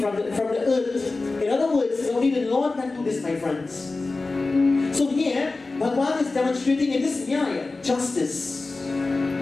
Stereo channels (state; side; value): quieter; right; 3.5 dB